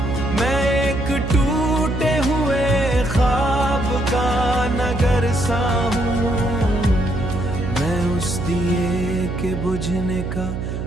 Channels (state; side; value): noise; right; hum, 4 dB below the sound